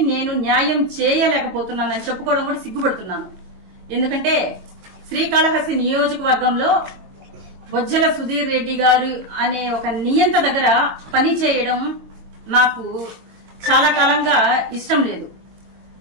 నేను న్యాయం చేయలేకపోతున్నానని చెప్పుకోవడం కూడా సిగ్గుపడుతున్నాను. ఎందుకంటే శ్రీకాళహస్తి నియోజకవర్గంలో బొజ్జల సుధీర్ రెడ్డి గారు అనే ఒక నియంత దగ్గర పని చేయడం నాకు చాలా కాలంగా ఇష్టం లేదు.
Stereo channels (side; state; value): left; late; 22 ms